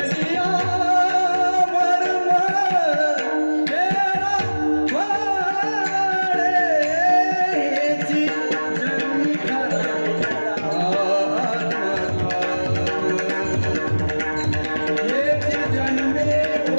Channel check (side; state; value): both; inverted; correlation -1.00